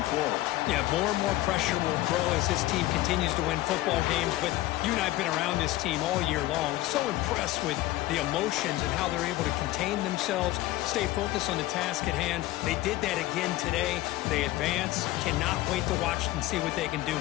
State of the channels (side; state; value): right; quieter; 16.8 dB